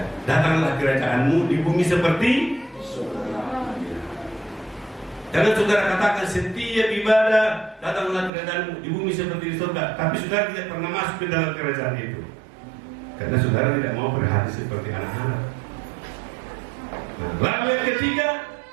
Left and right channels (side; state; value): left; drops out; at 8.3 s